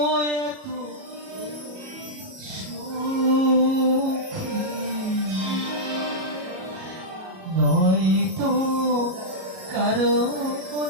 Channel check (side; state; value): left; late; 37 ms